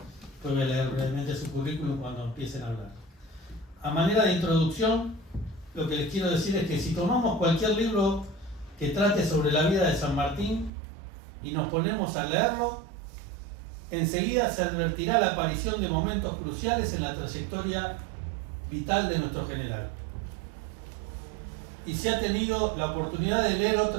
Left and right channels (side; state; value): left; drops out; at 10.7 s